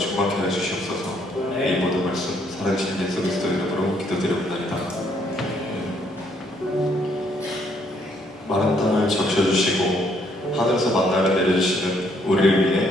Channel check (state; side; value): normal; both; correlation 0.69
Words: 해주시옵소서. 이 모든 말씀 살아계신 예수 그리스도 이름으로 기도드립니다. 마른 땅을 적셔주시고 하늘에서 만나를 내려주시는 우리를